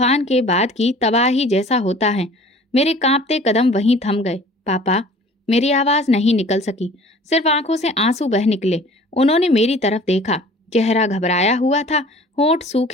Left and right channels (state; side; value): normal; both; correlation 0.48